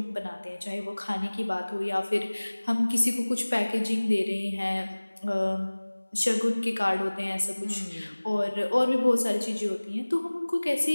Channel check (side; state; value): both; inverted; correlation -1.00